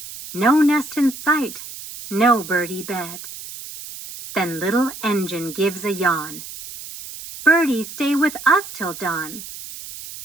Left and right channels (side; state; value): right; noise; hiss, 13 dB below the sound